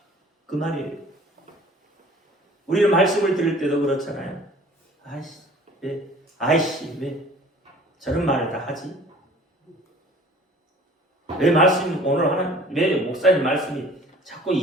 그 말이에요. 우리는 말씀을 들을 때도 그렇잖아요. 아이씨, 왜 저런 말을 다 하지? 왜 말씀 오늘 하는, 왜 목사님 말씀이 자꾸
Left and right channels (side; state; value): both; normal; correlation 0.49